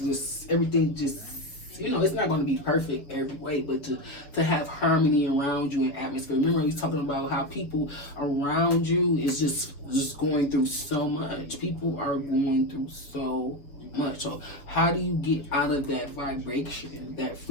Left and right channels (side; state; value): right; late; 7.1 ms